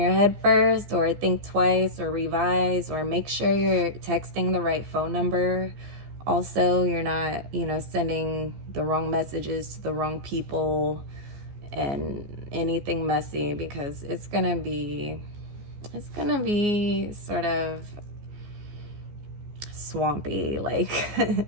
head first, or think twice, or revise, or make sure you're texting the right phone number. Also, you're not, sending the wrong messages to the wrong people and anything messy, because it's gonna be sort of swampy, like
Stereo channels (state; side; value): late; left; 14 ms